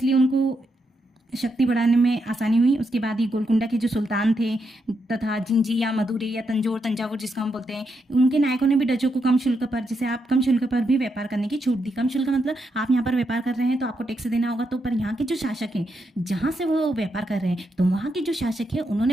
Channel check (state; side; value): normal; both; correlation 0.82